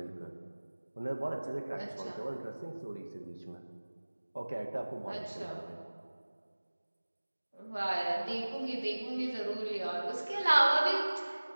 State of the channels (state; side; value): inverted; both; correlation -1.00